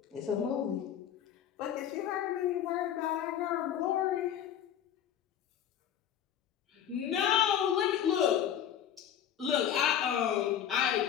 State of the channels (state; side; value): quieter; right; 9.8 dB